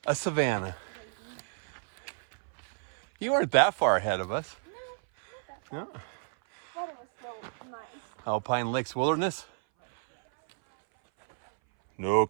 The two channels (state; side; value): silent; left; 57 dB below the other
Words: a savanna. You weren't that far ahead of us. No, not No. that far. Thought it was so nice. Alpine Lakes Wilderness. No